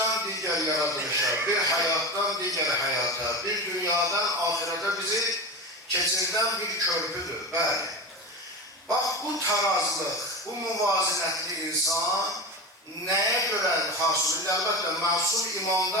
diğer yaratılışa, bir hayattan diğer hayata, bir dünyadan ahirete bizi keçirden bir körpüdür. Bəli. Bak bu tarazlıq, bu muvazinətli insan neye göre hasıl? Elbette masum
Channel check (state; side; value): normal; both; correlation 0.25